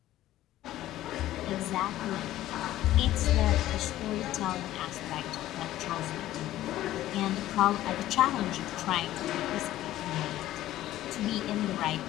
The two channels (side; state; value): right; quieter; 14.3 dB